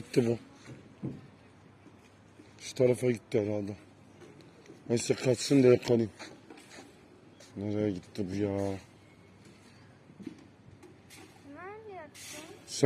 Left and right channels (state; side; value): identical; both; correlation 1.00